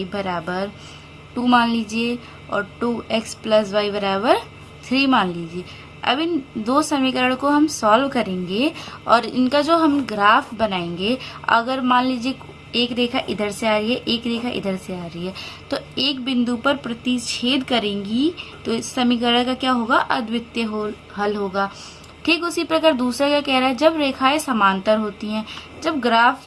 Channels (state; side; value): identical; both; correlation 1.00